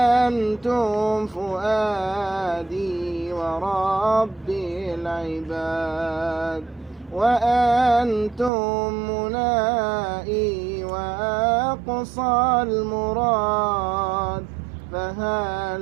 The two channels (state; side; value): drops out; left; at 8.5 s